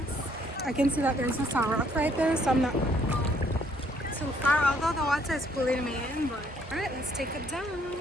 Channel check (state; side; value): normal; both; correlation 0.66